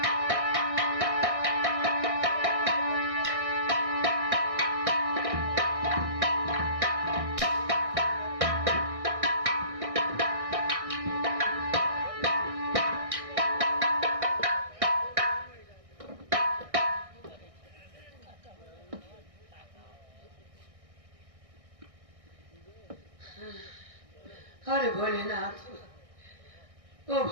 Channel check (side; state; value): left; late; 1.6 ms